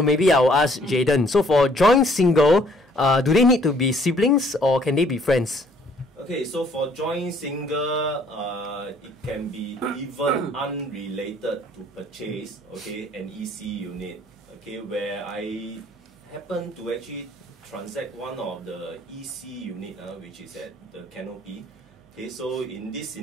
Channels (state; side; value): normal; both; correlation 0.62